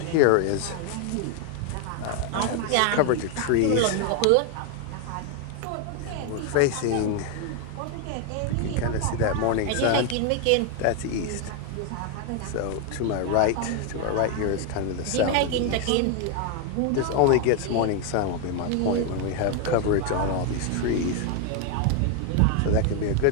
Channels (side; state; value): both; different; correlation 0.01